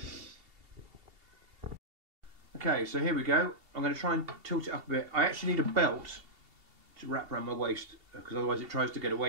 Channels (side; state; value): left; late; 2.7 ms